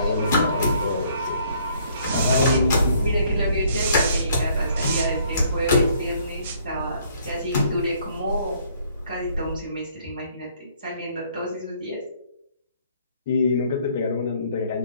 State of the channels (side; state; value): both; inverted; correlation -0.64